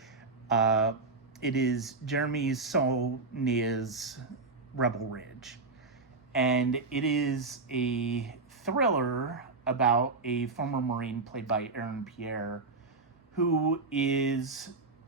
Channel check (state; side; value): quieter; left; 3.8 dB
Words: It is Jeremy Saulnier's Rebel Ridge. And it is a thriller about a former Marine played by Aaron Pierre who is